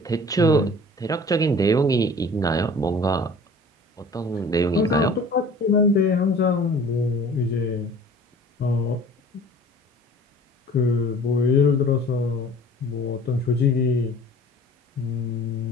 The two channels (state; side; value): normal; both; correlation 0.47